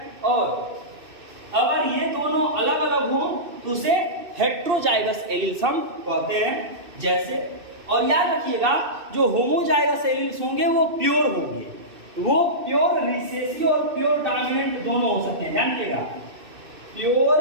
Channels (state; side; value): late; left; 2.6 ms